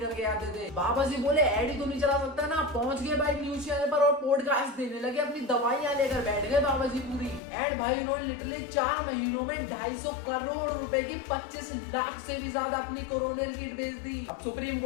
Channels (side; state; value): right; drops out; at 7.4 s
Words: आते थे। बाबा जी बोले ऐड ही तो नहीं चला सकता ना, पहुंच गए भाई न्यूज चैनल पर और पॉडकास्ट देने लगे, अपनी दवाइयां लेकर बैठ गए बाबा जी पूरी। एंड भाई उन्होंने लिटरली 4 महीनों में 250 करोड़ रुपए की 25 लाख से भी ज्यादा अपनी कोरोना किट बेच दी। अब सुप्रीम